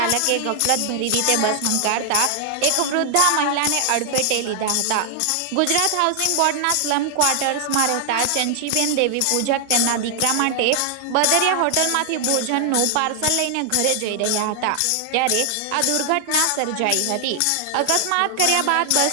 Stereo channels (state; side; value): different; both; correlation 0.00